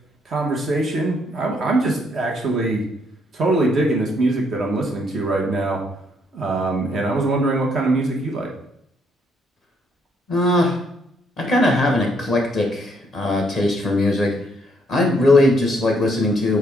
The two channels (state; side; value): normal; both; correlation 0.71